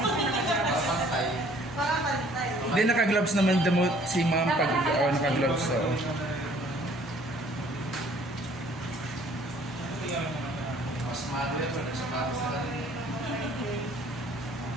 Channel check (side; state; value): both; normal; correlation 0.57